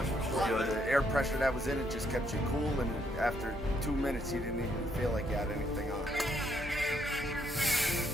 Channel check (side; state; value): both; normal; correlation 0.73